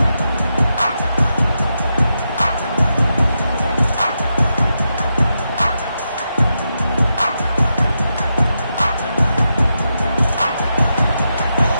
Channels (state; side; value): inverted; both; correlation -0.86